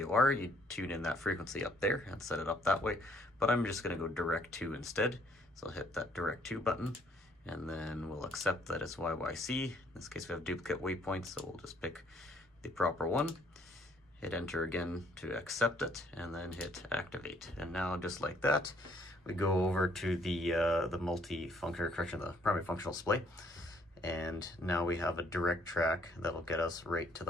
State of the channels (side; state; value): both; normal; correlation 0.65